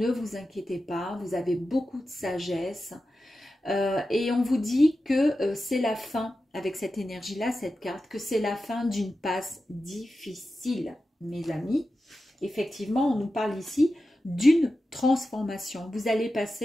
vous inquiétez pas, vous avez beaucoup de sagesse. Et on vous dit que c'est la fin, avec cette énergie-là, cette carte, que c'est la fin d'une passe difficile, mes amis. Effectivement, on nous parle ici d'une transformation. Vous allez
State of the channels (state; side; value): normal; both; correlation 0.92